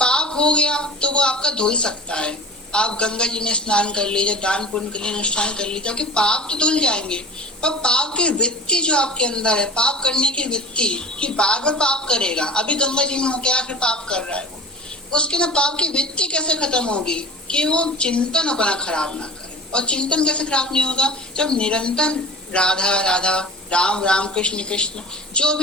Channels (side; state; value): both; normal; correlation 0.38